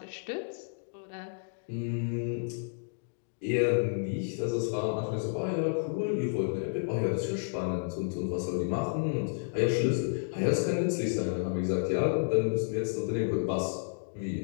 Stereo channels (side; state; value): right; silent; digital silence